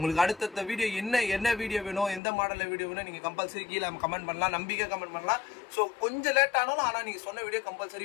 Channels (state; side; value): drops out; right; at 2.2 s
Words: அடுத்த வீடியோ என்ன வீடியோ வேணும், எந்த மாடலில் வீடியோ வேணும் நீங்கள் கம்பல்சரி கீழே கமெண்ட் பண்ணலாம், நம்பிக்கை கமெண்ட் பண்ணலாம். ஸோ கொஞ்சம் லேட் ஆனாலும் ஆனால் நீங்கள் சொன்ன வீடியோ